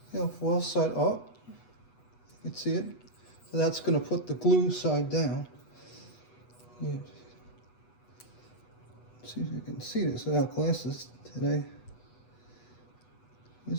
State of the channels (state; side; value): late; right; 8.2 ms